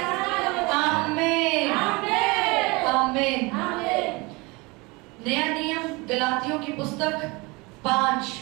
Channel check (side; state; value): left; quieter; 25.6 dB